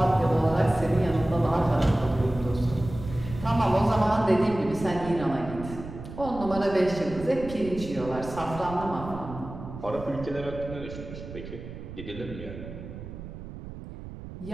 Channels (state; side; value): noise; right; rumble, 11 dB below the sound